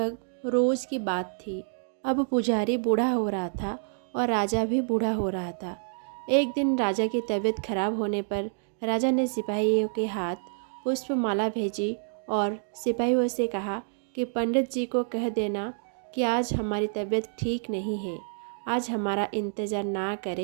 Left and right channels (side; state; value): left; silent; digital silence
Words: रोज की बात थी। अब पुजारी बूढ़ा हो रहा था और राजा भी बूढ़ा हो रहा था। एक दिन राजा की तबीयत खराब होने पर राजा ने सिपाहियों के हाथ पुष्पमाला भेजी और सिपाहियों से कहा कि पंडित जी को कह देना कि आज हमारी तबीयत ठीक नहीं है, आज हमारा इंतज़ार ना